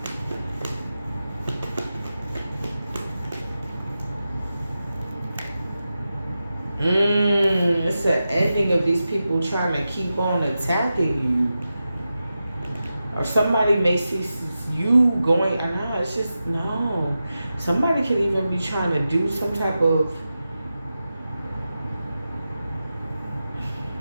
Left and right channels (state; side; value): inverted; both; correlation -0.91